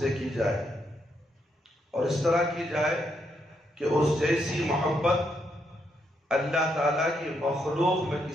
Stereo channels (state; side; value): normal; both; correlation 0.78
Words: کی جائے، اور اس طرح کی جائے کہ اس جیسی محبت اللہ تعالیٰ کی مخلوق میں